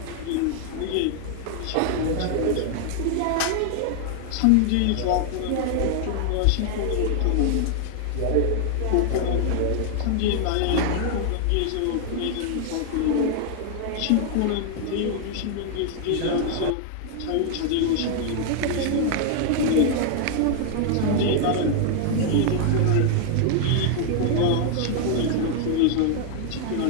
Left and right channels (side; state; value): both; different; correlation 0.00